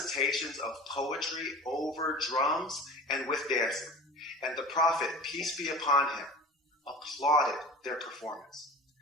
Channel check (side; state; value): both; normal; correlation 0.36